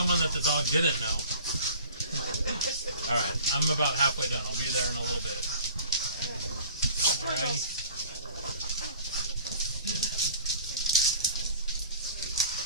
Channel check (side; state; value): both; inverted; correlation -0.46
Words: that the dog didn't know. Alright, I'm about halfway done. I'll be there in a little bit. Alrighty.